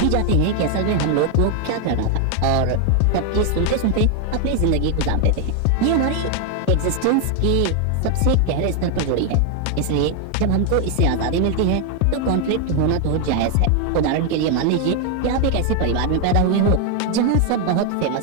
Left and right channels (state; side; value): different; both; correlation 0.01